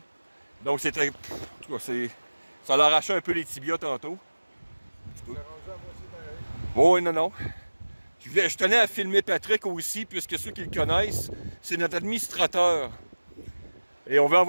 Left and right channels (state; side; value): inverted; both; correlation -1.00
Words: Donc, c'était... En tout cas, ça l'a arraché un peu les tibias tantôt. Oh, oui, non. Je tenais à filmer Patrick aussi, puisque ceux qui le connaissent, c'est notre administrateur. Et on veut